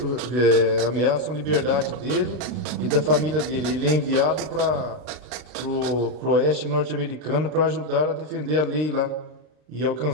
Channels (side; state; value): left; late; 33 ms